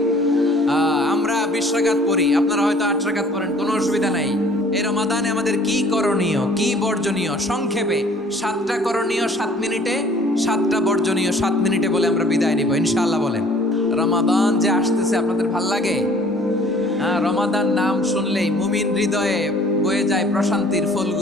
আমরা 20 রাকাত পড়ি, আপনারা হয়তো 8 রাকাত পড়েন, কোনো অসুবিধা নাই। এই রমাদানে আমাদের কি করণীয়, কি বর্জনীয়? সংক্ষেপে 7টা করণীয় 7 মিনিটে, 7টা বর্জনীয় 7 মিনিটে বলে আমরা বিদায় নিব ইনশাআল্লাহ। বলেন, রমাদান যে আসতেছে আপনাদের ভাল লাগে? রমাদান নাম শুনলেই মুমিন হৃদয়ে বয়ে যায় প্রশান্তির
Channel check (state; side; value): normal; both; correlation 0.54